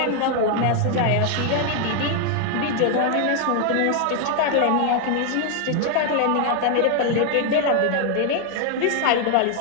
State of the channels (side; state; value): both; different; correlation 0.00